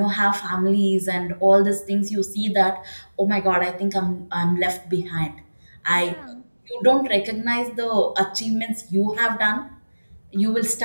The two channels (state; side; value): inverted; both; correlation -1.00